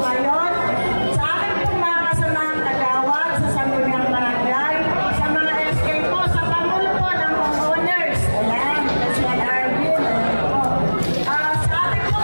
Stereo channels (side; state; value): both; inverted; correlation -1.00